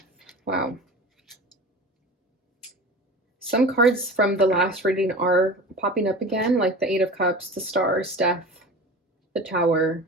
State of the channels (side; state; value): both; normal; correlation 0.34